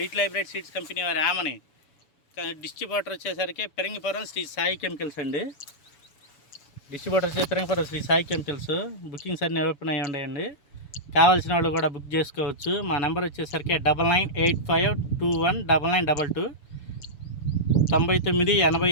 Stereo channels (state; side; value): late; right; 7.0 ms